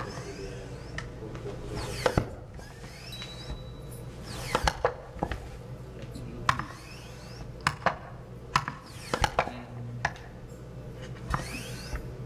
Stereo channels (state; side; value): identical; both; correlation 1.00